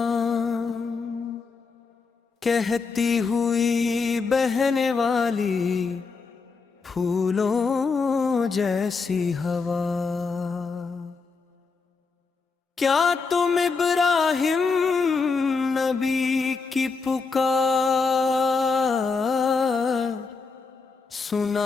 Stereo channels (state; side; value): quieter; right; 4.7 dB